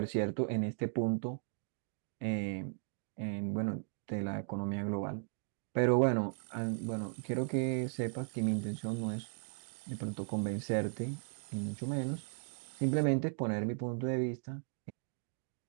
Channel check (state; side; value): silent; left; digital silence